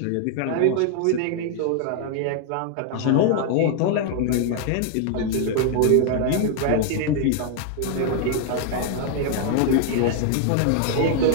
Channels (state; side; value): different; both; correlation 0.00